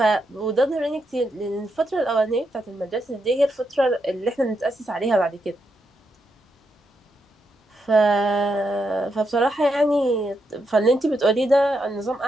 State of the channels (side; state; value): both; normal; correlation 0.82